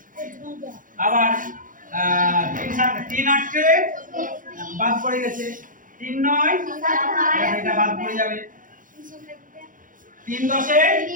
আবার 3 7 3 8 কে বাদ পড়ে গেছে। 3 9 এটা বাদ পড়ে যাবে। 3 10 এ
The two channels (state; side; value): late; left; 0.39 ms